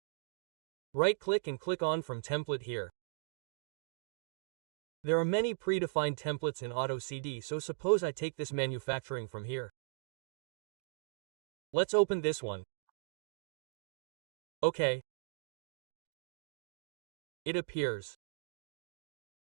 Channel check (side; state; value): left; silent; digital silence